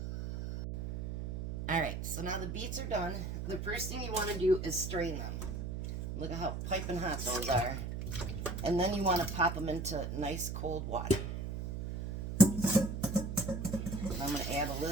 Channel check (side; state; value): right; noise; hum, 5 dB below the sound